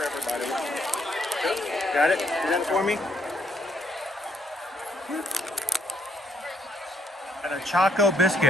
everybody. Got it? Do that for me. And a Choco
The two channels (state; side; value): normal; both; correlation 0.69